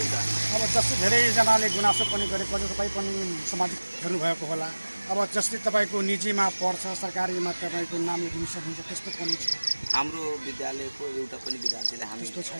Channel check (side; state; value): both; inverted; correlation -1.00